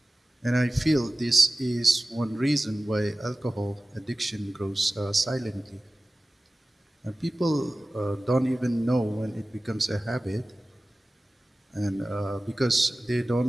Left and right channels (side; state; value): both; normal; correlation 0.96